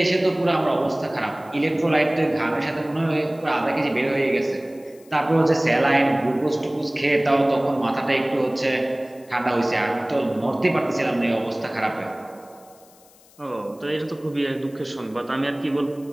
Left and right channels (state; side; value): noise; left; hiss, 27 dB below the sound